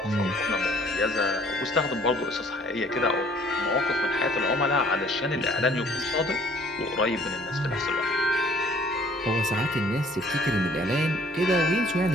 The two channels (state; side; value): normal; both; correlation 0.57